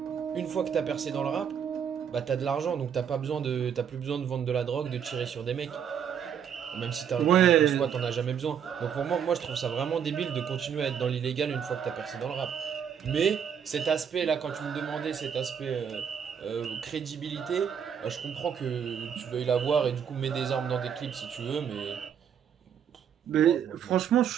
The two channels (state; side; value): quieter; left; 8.0 dB